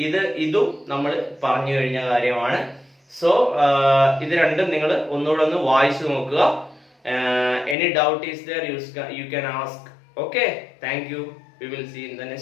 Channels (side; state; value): right; drops out; at 7.8 s